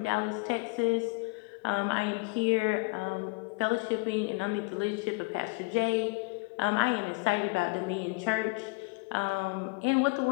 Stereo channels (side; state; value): right; quieter; 28.5 dB